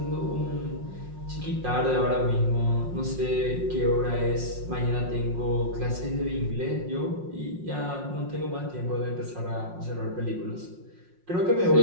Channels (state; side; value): late; left; 5.6 ms